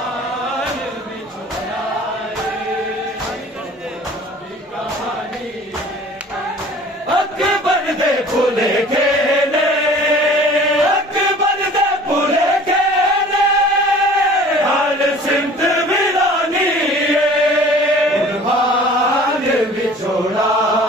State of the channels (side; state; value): both; normal; correlation 0.47